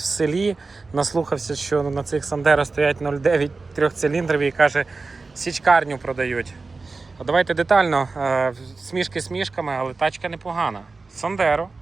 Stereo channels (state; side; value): quieter; left; 3.9 dB